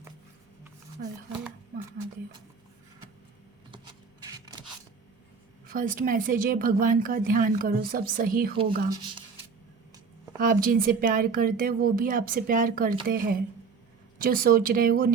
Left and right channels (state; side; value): quieter; left; 5.3 dB